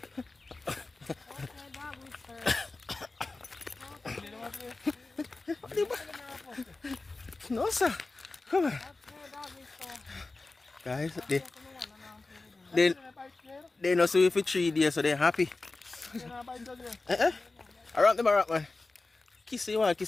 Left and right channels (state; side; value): quieter; right; 3.4 dB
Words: No, sir. Come on. Guys, they know see you for 3 days, so they're happy. Around them, man. Kiss you want